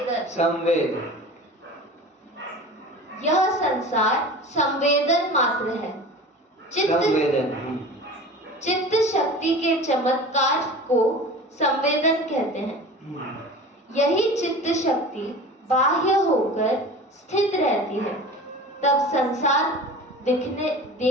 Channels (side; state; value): both; normal; correlation 0.37